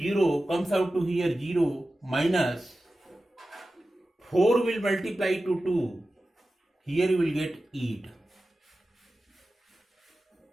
comes out to here 0, minus 4 will multiply to 2, here you will get 8,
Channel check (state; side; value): normal; both; correlation 0.94